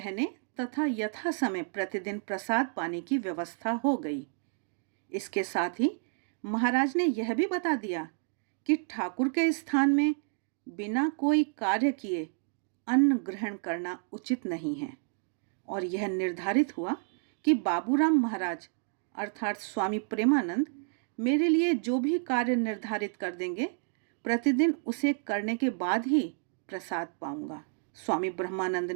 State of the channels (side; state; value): left; silent; 57 dB below the other